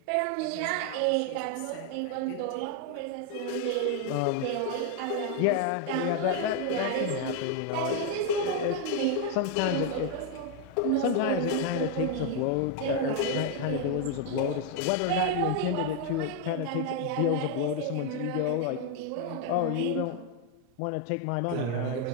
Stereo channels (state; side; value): different; both; correlation 0.01